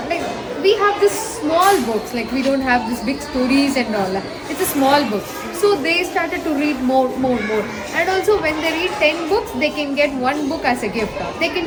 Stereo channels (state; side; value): identical; both; correlation 1.00